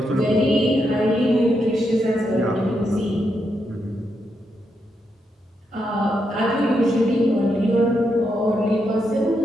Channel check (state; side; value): normal; both; correlation 0.82